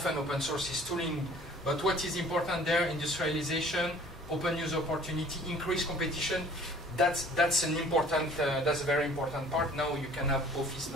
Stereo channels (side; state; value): both; normal; correlation 0.51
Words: open source is tooling, but what is important there, industrialization, open use opportunity, increased competition, that's a very important part. Now you can have Office